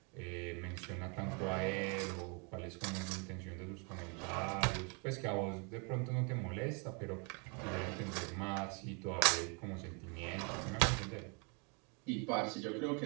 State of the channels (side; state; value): left; quieter; 33.9 dB